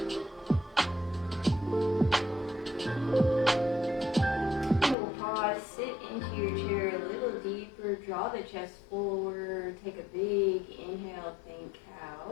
And we'll pause, sit into your chair a little deeper, draw the chest forward, take a big inhale, think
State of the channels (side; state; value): right; drops out; at 5.0 s